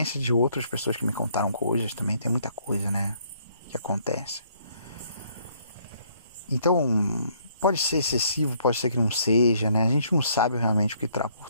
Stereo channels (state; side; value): inverted; both; correlation -0.65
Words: de outras pessoas que me contaram coisas, também tem muita coisa, né, que acontece. Então, Pode ser excessivo, pode ser que não seja, né? A gente não sabe realmente o que está por